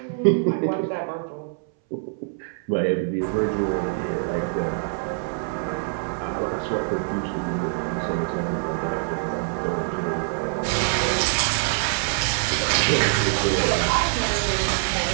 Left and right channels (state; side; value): silent; left; 62 dB below the other